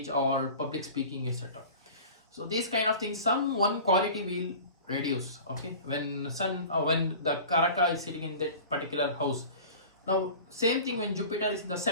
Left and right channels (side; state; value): both; inverted; correlation -0.39